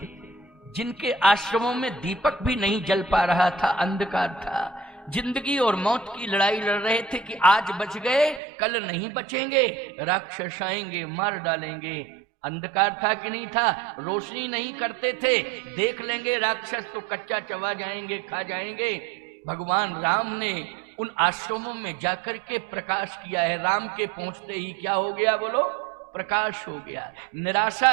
जिनके आश्रमों में दीपक भी नहीं जल पा रहा था, अंधकार था, जिंदगी और मौत की लड़ाई लड़ रहे थे कि आज बच गए कल नहीं बचेंगे, राक्षस आएंगे मार डालेंगे। अंधकार था कि नहीं था? रोशनी नहीं करते थे, देख लेंगे राक्षस तो कच्चा चबा जाएंगे, खा जाएंगे। भगवान राम ने उन आश्रमों में जाकर के प्रकाश किया है। राम के पहुंचते ही क्या हो गया बोलो? प्रकाश हो गया।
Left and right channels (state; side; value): drops out; left; at 8.4 s